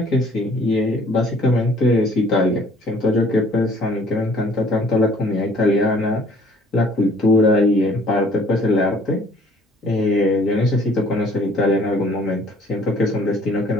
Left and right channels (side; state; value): both; normal; correlation 0.57